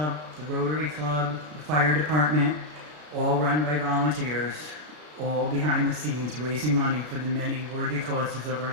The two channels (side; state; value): left; late; 33 ms